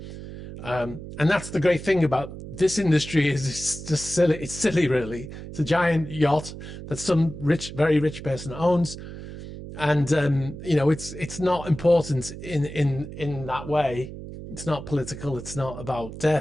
And that's the great thing about this industry, is it's just silly. It's silly, really. It's a giant yacht that some very rich person owns, and you know, it's not important in that way. It's not political. It's not about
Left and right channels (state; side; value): noise; right; hum, 11 dB below the sound